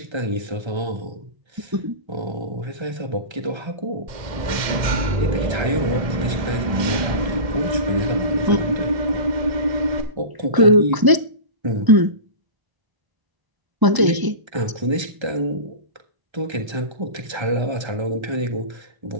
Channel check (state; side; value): late; left; 1.0 ms